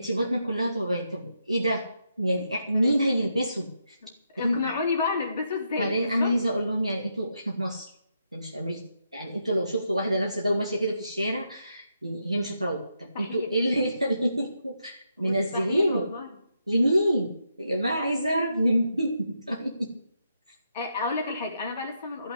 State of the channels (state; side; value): inverted; both; correlation -0.81